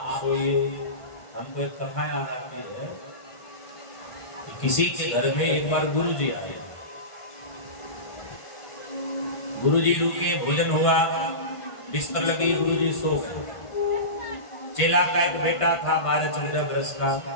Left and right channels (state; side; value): late; right; 1.5 ms